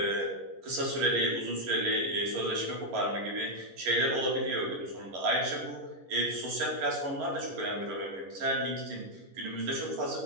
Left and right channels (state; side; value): late; left; 11 ms